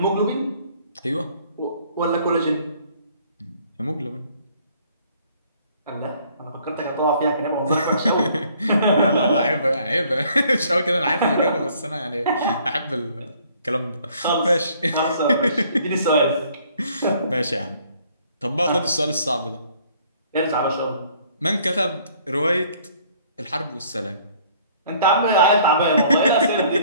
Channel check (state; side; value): inverted; both; correlation -0.60